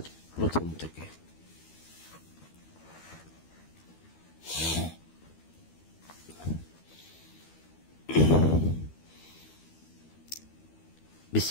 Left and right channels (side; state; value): right; late; 12 ms